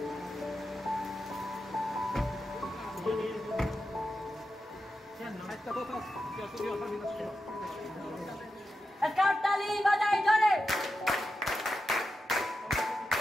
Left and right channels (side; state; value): both; normal; correlation 0.89